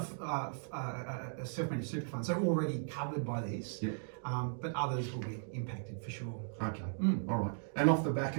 self-managed super funds, they're already covered by this, but others will be impacted for sure. Okay, all right. And off the back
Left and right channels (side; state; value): left; silent; digital silence